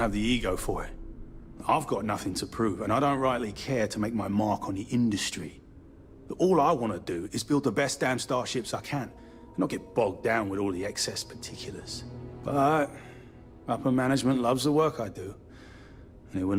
the ego for it. I've got nothing to prove, and I don't rightly care to make my mark on the industry. All I want to do is build the best damn starships I can, and not get bogged down with all the excess particulars. But upper management loves the work I do, and they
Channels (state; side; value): identical; both; correlation 1.00